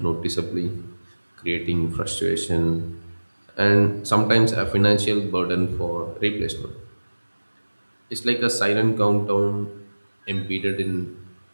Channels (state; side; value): inverted; both; correlation -1.00